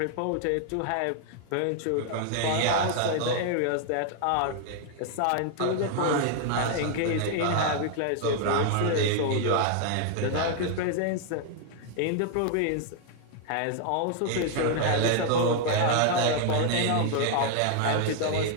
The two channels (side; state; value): both; different; correlation 0.00